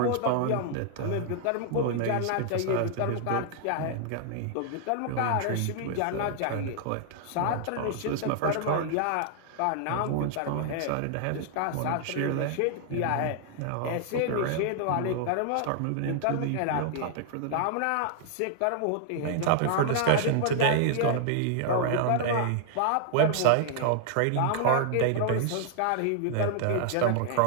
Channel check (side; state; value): both; different; correlation 0.00